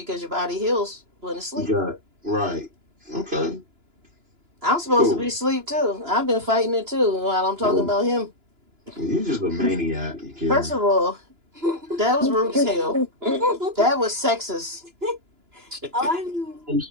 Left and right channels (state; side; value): late; left; 2.9 ms